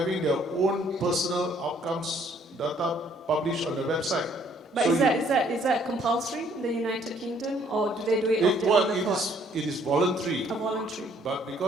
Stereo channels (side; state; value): both; normal; correlation 0.63